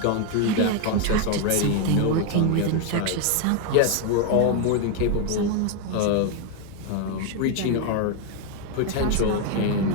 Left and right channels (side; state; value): both; different; correlation 0.01